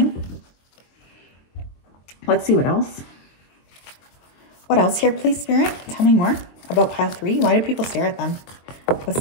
Let's see what else. What else here, please, Spirit? Tell me more about pile 3. Why do people stare at them? What's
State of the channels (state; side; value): late; right; 22 ms